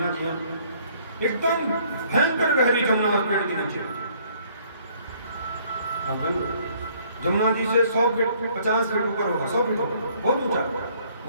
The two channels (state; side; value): inverted; both; correlation -0.62